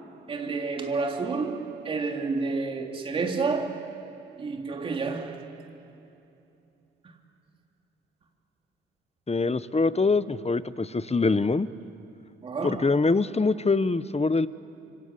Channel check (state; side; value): normal; both; correlation 0.67